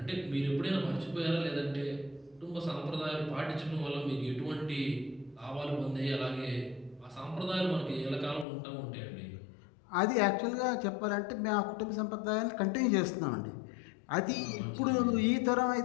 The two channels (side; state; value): right; drops out; at 8.5 s